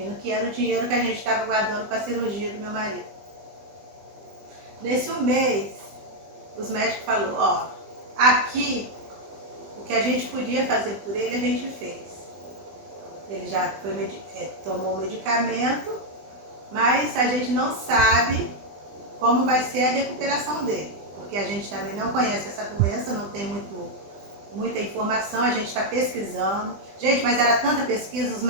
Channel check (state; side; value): late; left; 20 ms